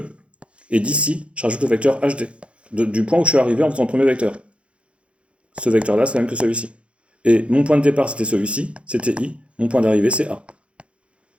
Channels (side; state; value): left; late; 0.060 ms